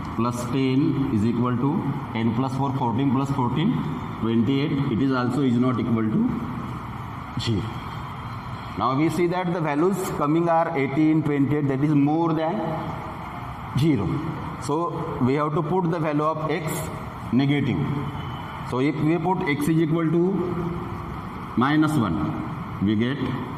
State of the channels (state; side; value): identical; both; correlation 1.00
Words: plus 10 is equal to 10 plus 4 14 plus 14 28. It is also is not equal to 0. Now we see that the values coming are 18, 28, that is more than 0. So we have to put the value of x negative. So if we put x is equal to minus 1, we get